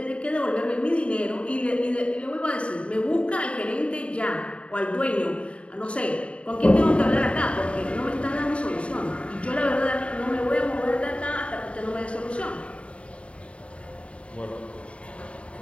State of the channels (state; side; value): late; right; 0.061 ms